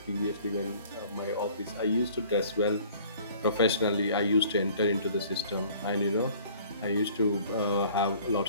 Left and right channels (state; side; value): inverted; both; correlation -0.52